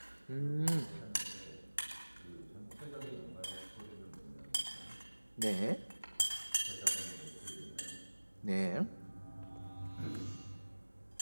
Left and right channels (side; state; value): both; inverted; correlation -1.00